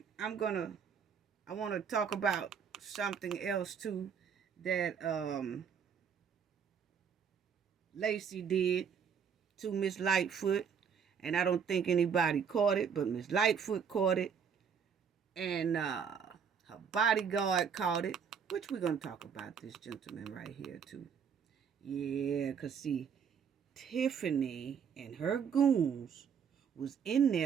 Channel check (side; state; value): left; quieter; 7.0 dB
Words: I want to talk about something else too that Lacey did to Miss Lightfoot, and I don't think anybody caught it, but Miss Lightfoot caught it, and her bodyguard caught it, which we're going to talk about this gentleman right here too. Yeah, because see, Tiffany and her goons was in